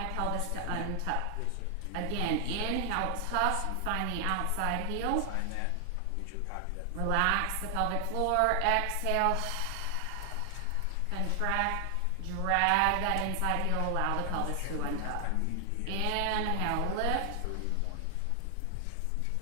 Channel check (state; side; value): different; both; correlation 0.00